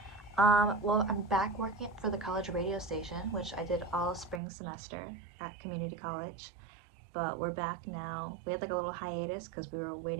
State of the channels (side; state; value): left; drops out; at 4.4 s